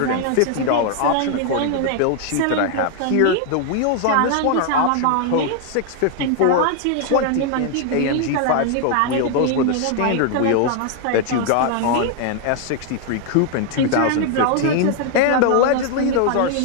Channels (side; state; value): both; different; correlation 0.00